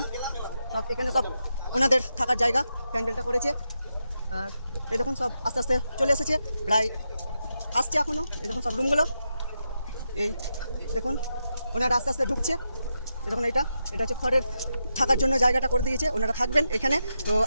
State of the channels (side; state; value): both; inverted; correlation -0.86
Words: সব এখানে সব ওনাদের থাকার জায়গা প্যান্ডেলটা করেছে। আর এই দেখুন, সব আস্তে আস্তে চলে এসেছে, প্রায় আসছে এখনও। এই দেখুন সব রুমগুলো, এই দেখুন ওনারা আস্তে আস্তে ঢুকছে। এই দেখুন, এটা হচ্ছে খড়ের থাকার জন্য জায়গাটা করে দিয়েছে, ওনারা থাকবেন এখানে। তো